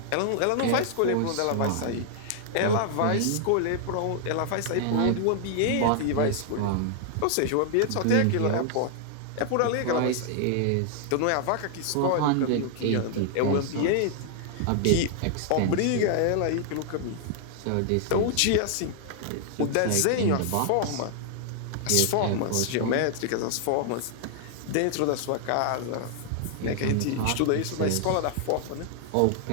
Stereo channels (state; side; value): different; both; correlation -0.01